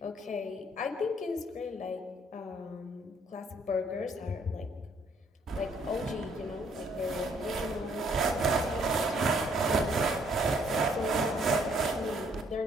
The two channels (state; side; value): normal; both; correlation 0.66